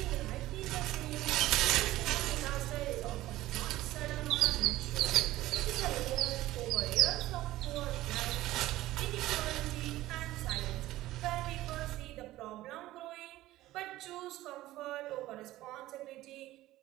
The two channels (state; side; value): quieter; left; 16.2 dB